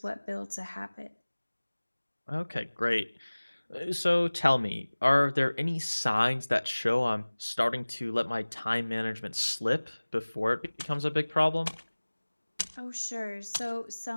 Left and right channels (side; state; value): both; inverted; correlation -1.00